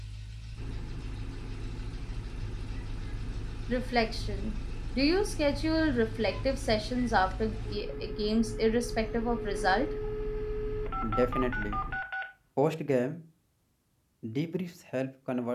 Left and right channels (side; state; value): both; identical; correlation 1.00